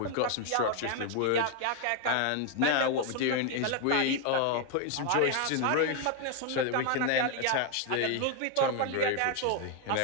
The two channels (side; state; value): both; different; correlation 0.01